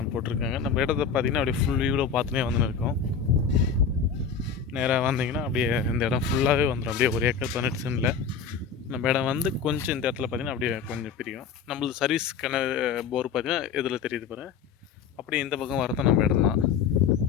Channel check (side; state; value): right; quieter; 6.5 dB